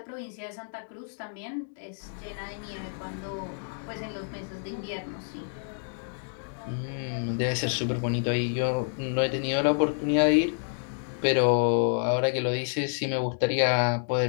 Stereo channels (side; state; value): right; silent; digital silence